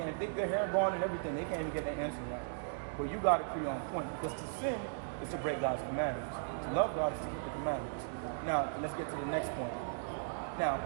think their hair gone and everything, they can't even get the answer right. But you got to be on point, because to sin is to break God's commandments. To love God is to keep the commandments. Now, let's get to the next point. Now,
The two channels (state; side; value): silent; left; digital silence